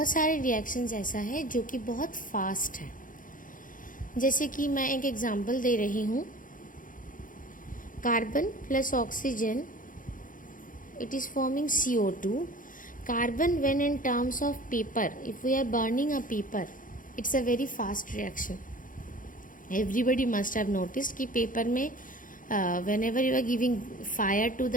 सारे रिएक्शंस ऐसा है जो कि बहुत फास्ट है। जैसे कि मैं एक एग्जांपल दे रही हूँ, carbon plus oxygen, it is forming CO2. Carbon, when in terms of paper, if we are burning a paper, it's a very fast reaction. Everybody must have noticed कि paper में whenever you are giving fire to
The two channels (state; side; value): late; right; 0.39 ms